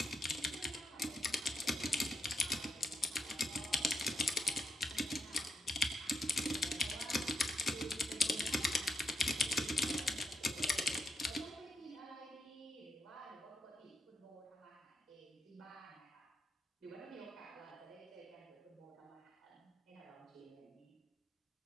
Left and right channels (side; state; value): both; normal; correlation 0.82